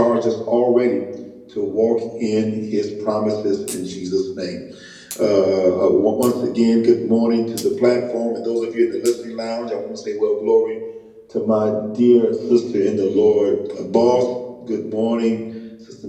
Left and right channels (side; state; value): both; identical; correlation 1.00